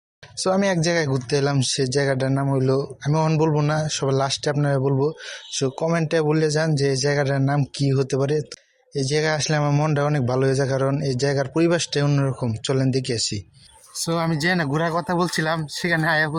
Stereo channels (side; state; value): both; identical; correlation 1.00